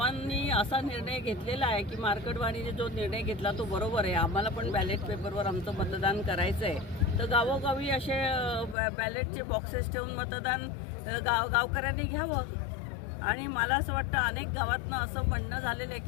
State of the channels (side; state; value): right; drops out; at 8.8 s